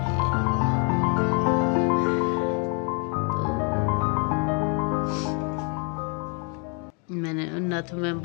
मैंने नथ में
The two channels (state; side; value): quieter; right; 36.0 dB